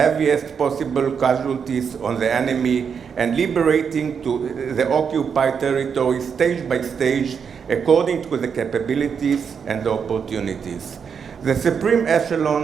possible casualties on the enemy, and liberating to the occupied territory stage by stage according to the capabilities and the opportunities. The supreme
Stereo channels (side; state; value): left; quieter; 6.7 dB